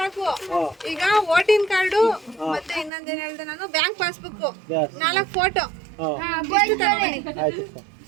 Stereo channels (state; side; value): drops out; left; at 2.9 s